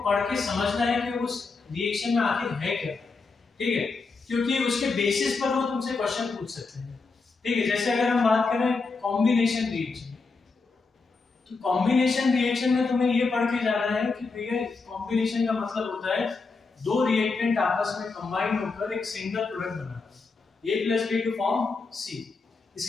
पढ़ के समझना है कि उस रिएक्शन में आखिर है क्या, ठीक है, क्योंकि उसके बेसिस पर वो तुमसे क्वेश्चन पूछ सकते हैं, ठीक है। जैसे अगर हम बात करें कॉम्बिनेशन रिएक्शन, तो कॉम्बिनेशन रिएक्शन में तुम्हें ये पढ़ के जाना है कि भैया कॉम्बिनेशन का मतलब होता है दो रिएक्टेंट आपस में कंबाइन होकर एक सिंगल प्रोडक्ट बनाना, A plus B to form C।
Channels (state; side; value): quieter; right; 4.2 dB